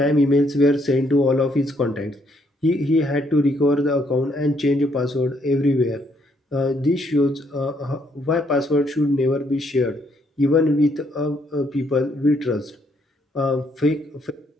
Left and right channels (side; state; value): both; normal; correlation 0.71